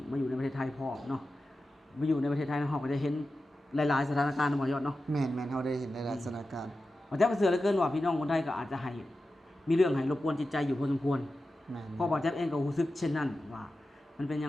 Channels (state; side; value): normal; both; correlation 0.93